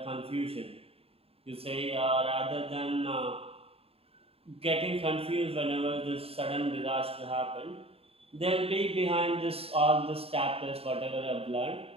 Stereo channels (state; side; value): late; left; 0.28 ms